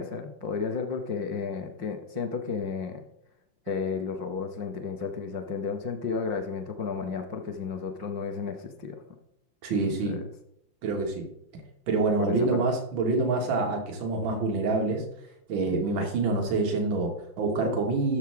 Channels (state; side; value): late; left; 6.0 ms